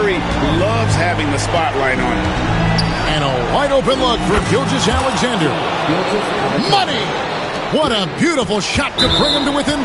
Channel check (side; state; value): both; identical; correlation 1.00